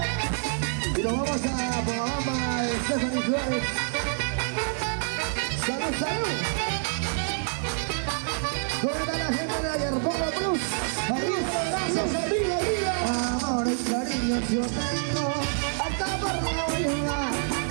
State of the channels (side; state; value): left; silent; digital silence